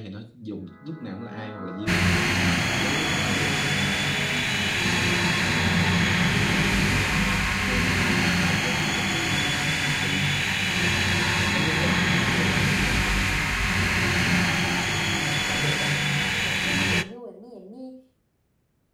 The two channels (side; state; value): both; identical; correlation 1.00